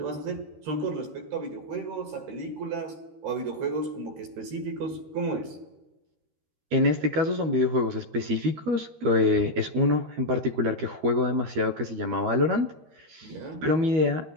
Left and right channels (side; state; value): left; late; 13 ms